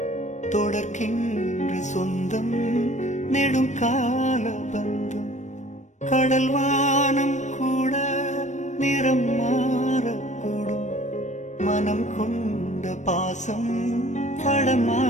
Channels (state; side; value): late; right; 0.34 ms